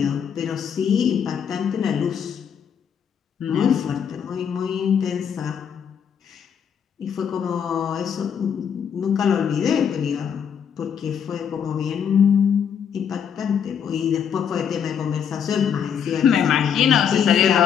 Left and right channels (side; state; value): right; quieter; 7.8 dB